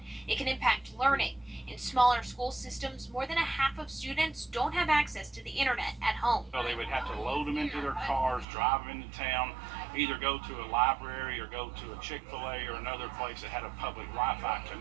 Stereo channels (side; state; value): left; drops out; at 8.5 s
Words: It can impact learning. In smaller school systems, more than 1/2 of students don't have access to the internet at home. So they would have to load them into their cars, drive them into town, either go to a library or go to a Chick-fil-A or another place that had a public Wi-Fi